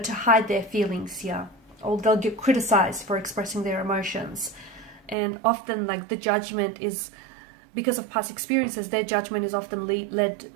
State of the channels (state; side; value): drops out; left; at 5.2 s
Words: hide their feelings here, or they'll get criticized for expressing their emotions. And often, like, the judgment is, because of past experiences, their judgment is often